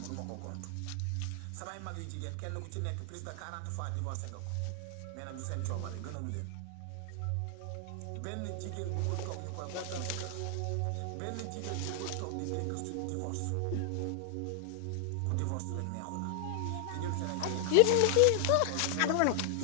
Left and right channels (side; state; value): both; different; correlation 0.00